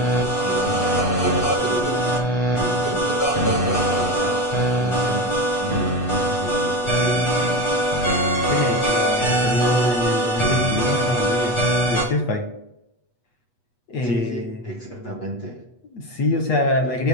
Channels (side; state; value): right; late; 8.2 ms